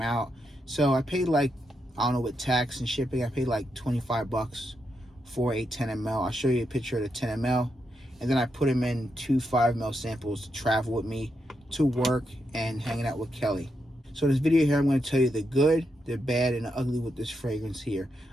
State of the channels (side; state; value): both; normal; correlation 0.83